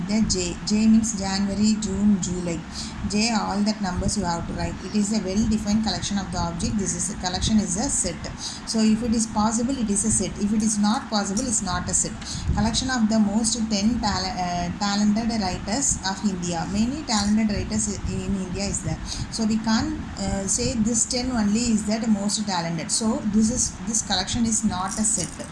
the J. J means January, June, July. J, all that numbers you have to write. It is a well defined collection of the object. This is a collection is a set. So if it is possible it is a set. If it is not possible it's not a set. Collection of the most 10 talented writers of India. Many talented writers in India is there. So we can't say this 10 only is that most talented. So this collection is not a set.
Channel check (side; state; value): both; identical; correlation 1.00